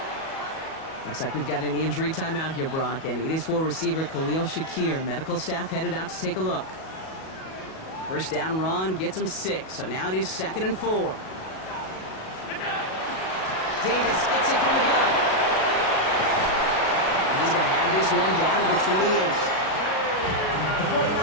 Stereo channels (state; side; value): late; right; 37 ms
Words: Looks like we've got an injury timeout here, Brock, and it is for receiver Khalil Shakir. Medical staff headed out to take a look. First down run gets him 6, so now it is 2nd and 4. Davis gets it from the gun. He's going to have this one down to the 28. The